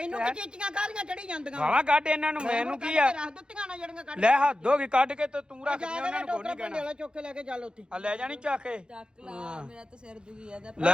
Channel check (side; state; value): left; late; 0.050 ms